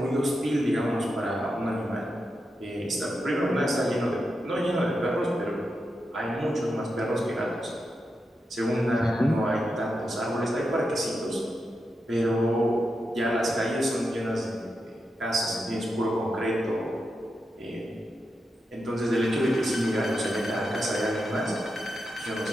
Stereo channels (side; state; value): both; normal; correlation 0.87